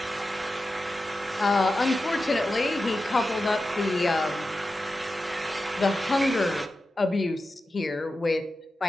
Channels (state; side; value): normal; both; correlation 0.92